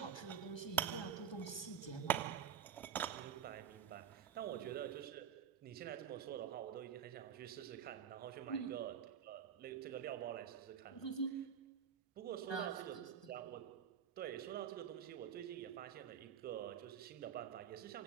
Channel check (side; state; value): left; quieter; 8.4 dB